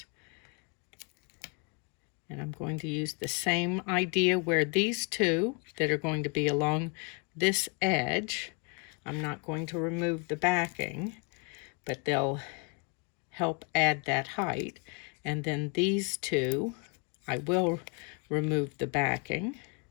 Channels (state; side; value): quieter; right; 33.8 dB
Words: And I'm going to use the same idea where these two that are going to be along this edge, I'm not going to remove the backing, but they'll help add that height. And then these two, I will remove the backing,